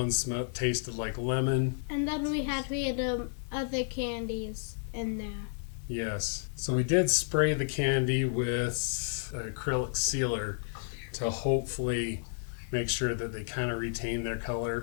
tasted like lemon. And then we had other candies in there. Yes. So we did spray the candy with acrylic sealer to hopefully make sure that they kind of retained their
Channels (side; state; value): right; silent; digital silence